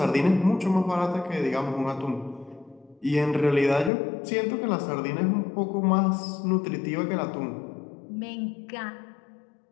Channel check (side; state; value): right; drops out; at 3.9 s